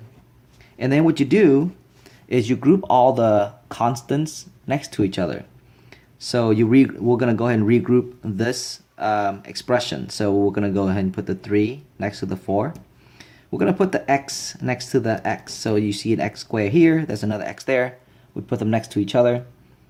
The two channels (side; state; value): both; identical; correlation 1.00